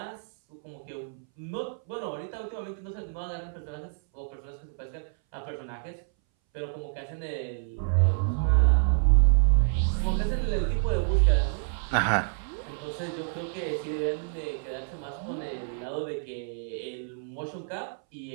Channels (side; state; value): left; silent; 59 dB below the other